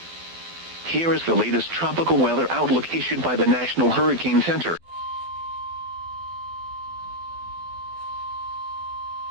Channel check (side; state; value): left; late; 12 ms